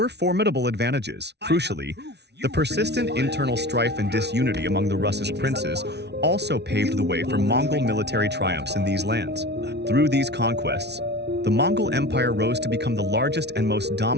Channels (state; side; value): late; left; 0.50 ms